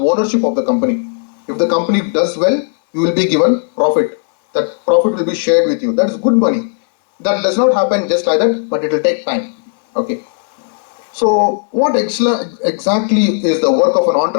of the company. If the company does well, you will be given profit. That profit will be shared with you. That is good money. That does not happen just like that, but it will take time. Okay. So what exactly is the work of an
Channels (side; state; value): right; silent; 70 dB below the other